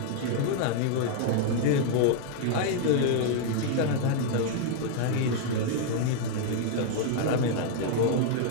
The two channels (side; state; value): both; different; correlation 0.00